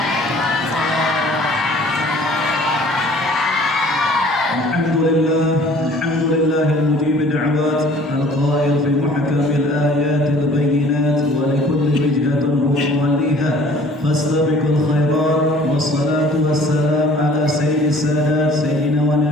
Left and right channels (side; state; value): both; normal; correlation 0.52